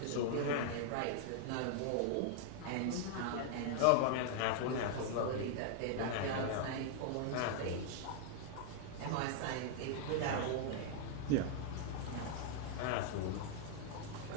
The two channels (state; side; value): different; both; correlation 0.00